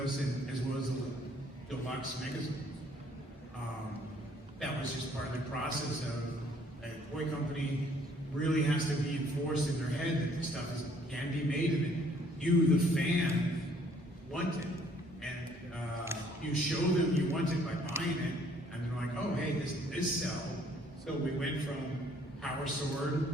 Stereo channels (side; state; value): both; normal; correlation 0.62